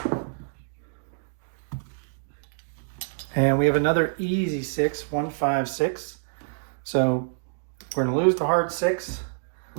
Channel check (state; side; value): silent; left; digital silence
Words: And we have another easy 6, 1, 5, 6. So we're going to lose the hard 6,